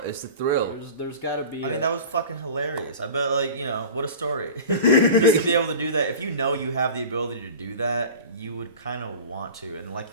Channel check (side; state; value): both; inverted; correlation -0.37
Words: It's the thrill. There's gotta be. I mean, that was fucking hilarious. I bet, like, you know, what a story. Just to be able to do that. If you know you have the ability to do that, you would kind of want to. And like